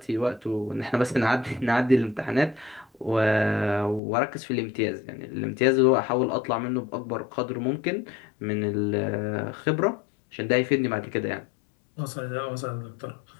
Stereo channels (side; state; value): right; drops out; at 4.0 s